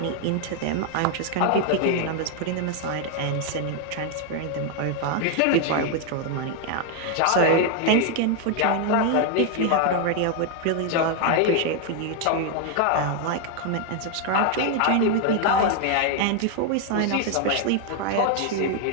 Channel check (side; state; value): both; different; correlation 0.00